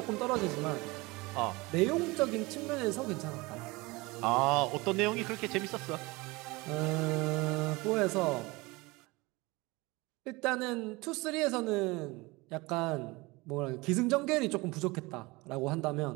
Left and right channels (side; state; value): left; quieter; 23.4 dB